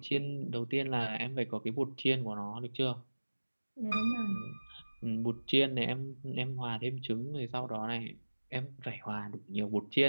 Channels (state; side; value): inverted; both; correlation -1.00